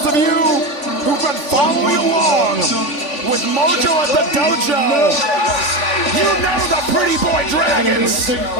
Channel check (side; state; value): right; late; 3.5 ms